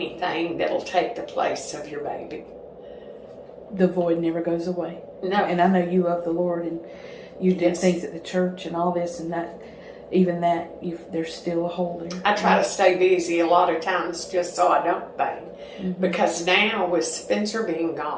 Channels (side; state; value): both; identical; correlation 1.00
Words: that'll take the place of your baby. The void never goes away. No. And I know you love the Lord, and you did things at the church and all this, and that, even that, there's still a hole there. I try to stay busy a lot of times just so I don't bang. Because now with Spencer being